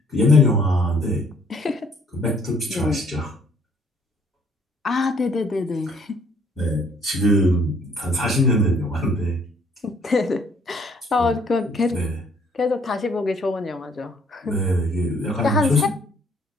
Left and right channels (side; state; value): both; normal; correlation 0.63